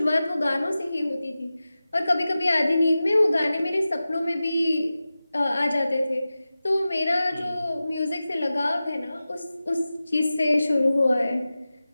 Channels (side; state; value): both; inverted; correlation -0.95